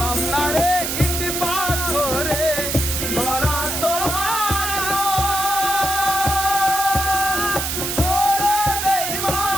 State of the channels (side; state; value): right; noise; hiss, 2 dB below the sound